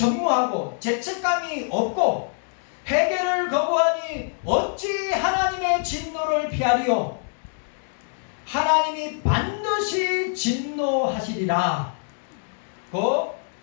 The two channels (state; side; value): silent; right; 62 dB below the other